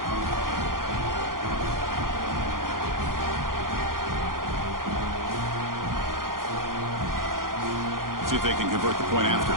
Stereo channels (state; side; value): late; left; 0.91 ms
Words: See if they can convert the point after.